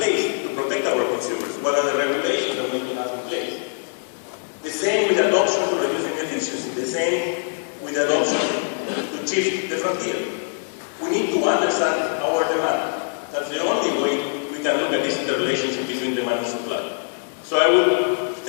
to protect our consumers? What are the regulations that we need to have in place? The same with adoption to reducing efficiency, the same with adoption to shift the frontier. We need to understand our demand. That's the only way we can look at this interrelationship between demand and supply. So I would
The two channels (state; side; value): silent; right; digital silence